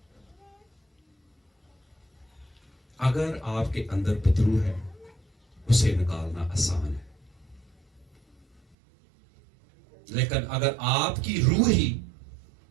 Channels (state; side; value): drops out; left; at 8.8 s